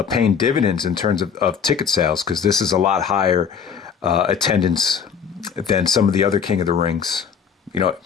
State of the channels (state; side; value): quieter; right; 6.9 dB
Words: paying dividends in terms of ticket sales, because this is a lot higher attendance than some of the other King of the Rings. We